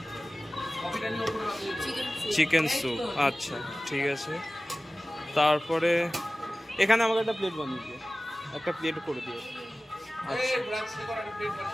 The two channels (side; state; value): both; normal; correlation 0.97